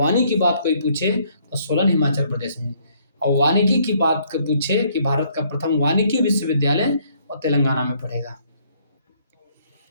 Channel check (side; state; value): both; inverted; correlation -0.66